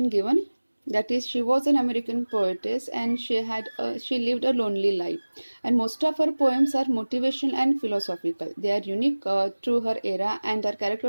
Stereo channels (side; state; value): both; inverted; correlation -1.00